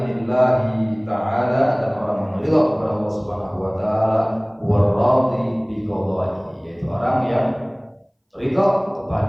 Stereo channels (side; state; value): both; identical; correlation 1.00